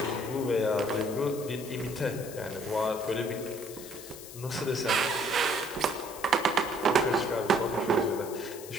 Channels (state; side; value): noise; left; hiss, 14 dB below the sound